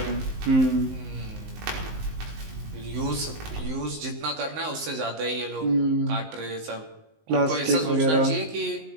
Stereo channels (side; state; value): left; late; 19 ms